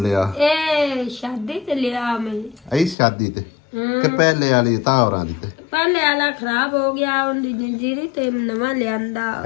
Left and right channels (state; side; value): drops out; right; at 3.0 s